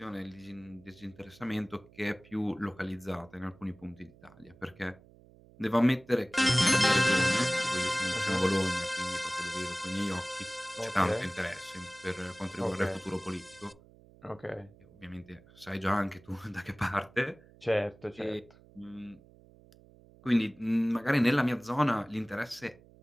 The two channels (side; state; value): right; noise; hum, 25 dB below the sound